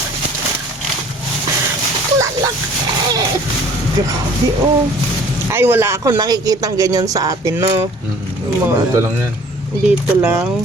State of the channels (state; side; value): normal; both; correlation 0.52